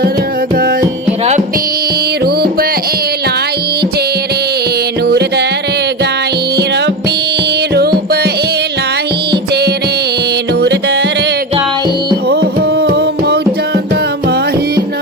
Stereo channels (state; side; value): normal; both; correlation 0.20